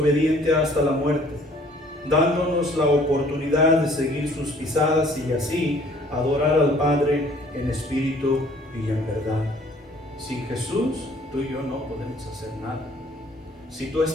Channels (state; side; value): normal; both; correlation 0.56